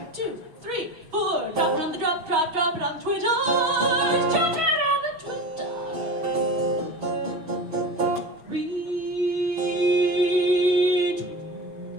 2, 3, 4. Drop it on the drop it on the Twitter. Drop it on the Twitter.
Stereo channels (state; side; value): late; left; 6.2 ms